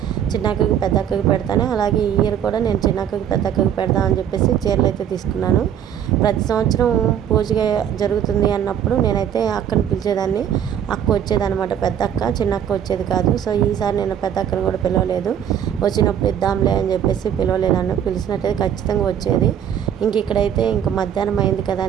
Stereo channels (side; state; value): left; quieter; 9.3 dB